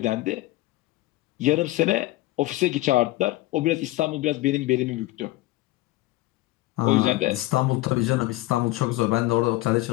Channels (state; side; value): quieter; right; 18.1 dB